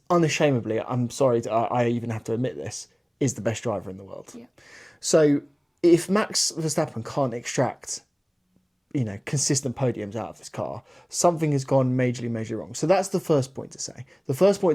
unashamedly, I'm sorry, I even have to admit this, is the best driver in the world. Yeah. So if Max Verstappen can't extract, consistent podiums out of this car, something has gone majorly wrong. So that's the first point to say. The first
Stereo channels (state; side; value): identical; both; correlation 1.00